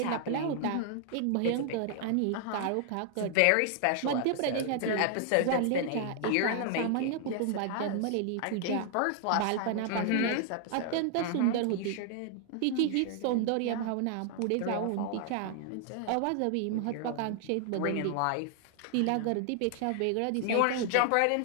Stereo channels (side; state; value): both; different; correlation 0.00